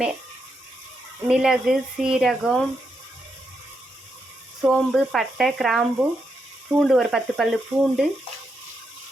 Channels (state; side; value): normal; both; correlation 0.82